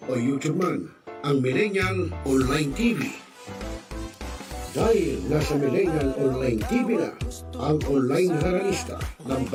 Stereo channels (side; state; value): both; identical; correlation 1.00